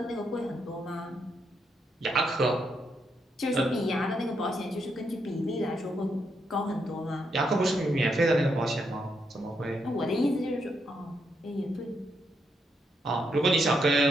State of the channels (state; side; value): normal; both; correlation 0.79